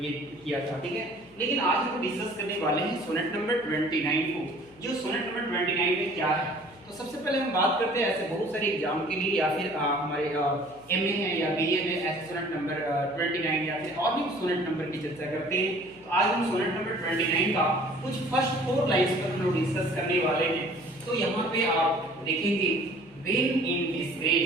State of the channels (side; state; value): left; noise; hum, 26 dB below the sound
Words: ये किया था, ठीक है। लेकिन आज हम डिस्कस करने वाले हैं सोनेट नंबर 29 को। जो सोनेट नंबर 29 में क्या है, तो सबसे पहले हम बात करते हैं ऐसे बहुत सारे एग्जाम के लिए या फिर हमारे एमए है या बीए में ऐसे सोनेट नंबर 29 या फिर और भी सोनेट नंबर की चर्चा करते हैं। तो आज हम सोनेट नंबर 29 का कुछ फर्स्ट 4 लाइंस पर हम लोग डिस्कस करने वाले हैं। तो यहाँ पे आप देखेंगे when in